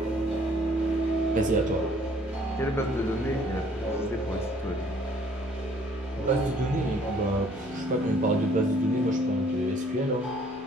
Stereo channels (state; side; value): normal; both; correlation 0.60